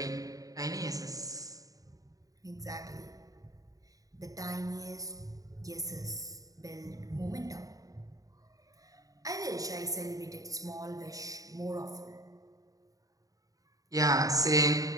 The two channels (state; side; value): late; left; 0.17 ms